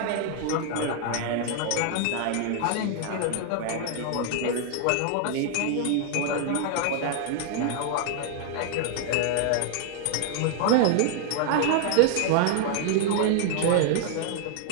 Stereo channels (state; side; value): different; both; correlation 0.00